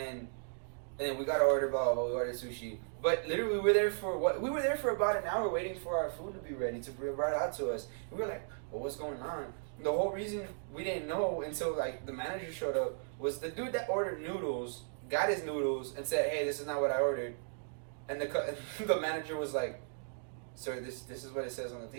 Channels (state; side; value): silent; left; digital silence